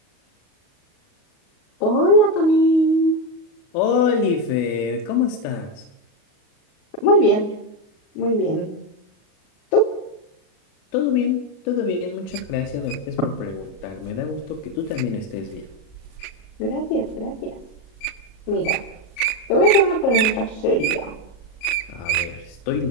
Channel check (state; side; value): late; right; 37 ms